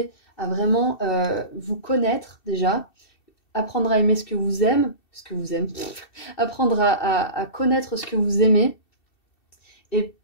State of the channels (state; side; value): late; right; 2.7 ms